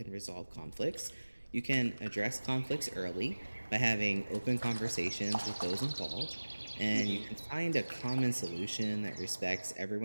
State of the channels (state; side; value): inverted; both; correlation -1.00